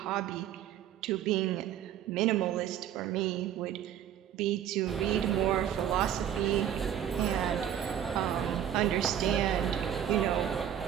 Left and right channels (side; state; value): left; quieter; 10.1 dB